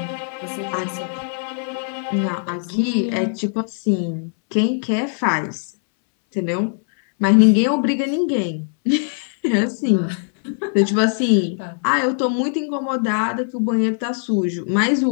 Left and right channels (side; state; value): right; silent; 65 dB below the other